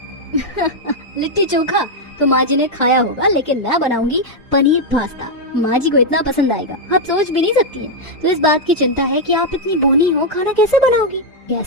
लिट्टी चोखा तो माँ जी ने खाया होगा, लेकिन मैं बनाऊंगी पनीर पास्ता। माँ जी को इतना पसंद आएगा, आप सोच भी नहीं सकती है। तो इस बात की चिंता है कि आप इतनी बोनी हो, खाना कैसे बनाओगी?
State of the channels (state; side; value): normal; both; correlation -0.01